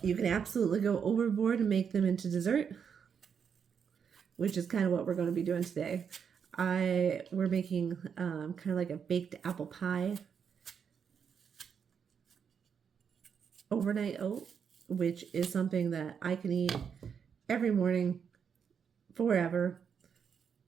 You can absolutely go overboard and make them into dessert, which is kind of what we're going to be doing today. We're making kind of like a baked apple pie overnight oat, which is something that I can eat every morning forever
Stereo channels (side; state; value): left; quieter; 7.1 dB